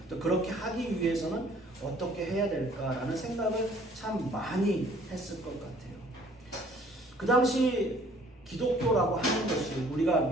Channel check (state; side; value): normal; both; correlation 0.57